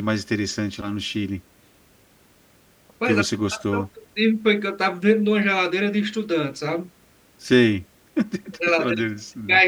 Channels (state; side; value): identical; both; correlation 1.00